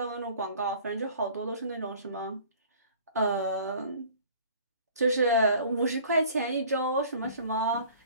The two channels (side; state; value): both; inverted; correlation -0.49